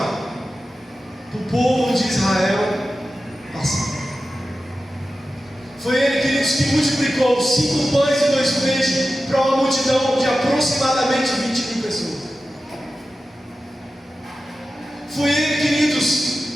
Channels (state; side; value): normal; both; correlation 0.94